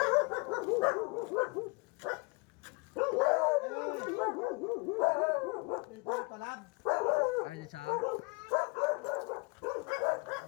Dito talab. Ay, sa?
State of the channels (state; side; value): quieter; right; 30.4 dB